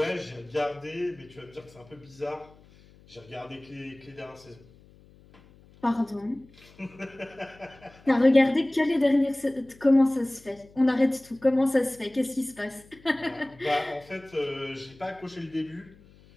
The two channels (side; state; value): left; noise; hum, 26 dB below the sound